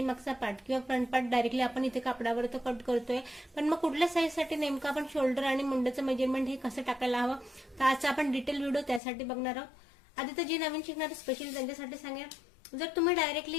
पार्ट किंवा फ्रंट पार्ट डायरेक्टली आपण इथे कापडावर तर कट करतोय, पण मग कुठल्या साईजसाठी नेमकं आपण शोल्डर आणि मुंड्याचं मेजरमेंट हे कसं टाकायला हवं, तर आजचा आपण डिटेल व्हिडिओ त्यासाठी बघणार आहोत। आधी तर जे नवीन शिकणारे स्पेशली त्यांच्यासाठी सांगेन, जर तुम्ही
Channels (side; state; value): right; drops out; at 9.0 s